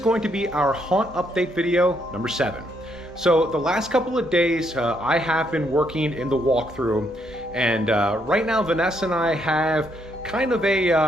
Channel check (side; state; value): both; normal; correlation 0.74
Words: to be our haunt update video number 7. So the last couple of days I have been working in the walkthrough, and right now Vanessa and I have kind of